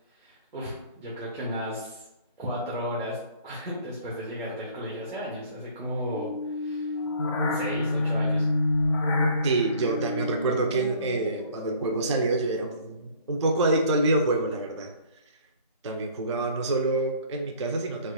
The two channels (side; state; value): both; inverted; correlation -0.53